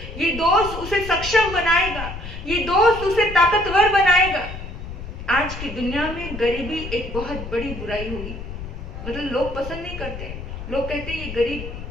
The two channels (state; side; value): noise; left; rumble, 9 dB below the sound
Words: ये दोस्त उसे सक्षम बनाएगा, ये दोस्त उसे ताकतवर बनाएगा। आज की दुनिया में गरीबी एक बहुत बड़ी बुराई हुई, मतलब लोग पसंद नहीं करते। लोग कहते हैं ये